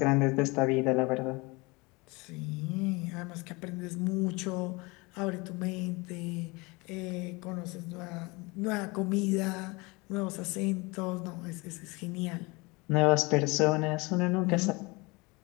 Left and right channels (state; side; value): quieter; right; 25.7 dB